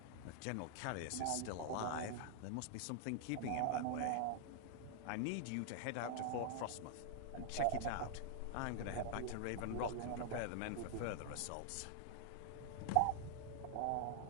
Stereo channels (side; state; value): both; different; correlation 0.00